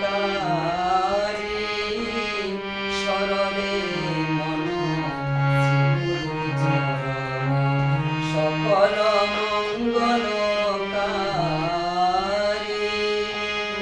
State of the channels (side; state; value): both; identical; correlation 1.00